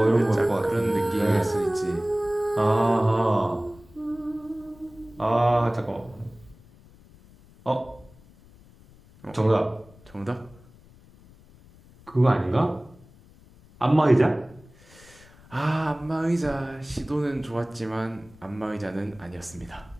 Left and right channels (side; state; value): left; noise; rumble, 25 dB below the sound